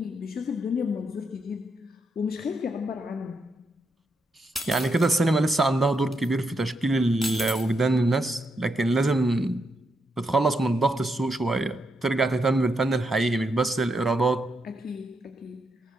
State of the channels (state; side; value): normal; both; correlation 0.81